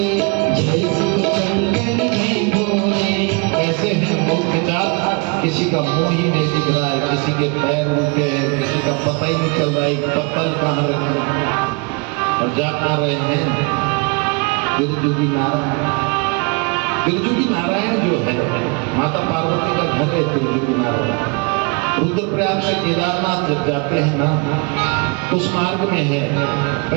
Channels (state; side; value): quieter; left; 32.1 dB